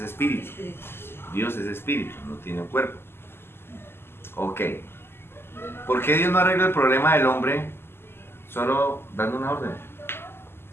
espíritu. Sí. Dios es espíritu, no tiene un cuerpo. Ok. ¿Por qué Dios no arregla el problema del hombre solo dando una orden?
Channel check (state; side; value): late; right; 0.12 ms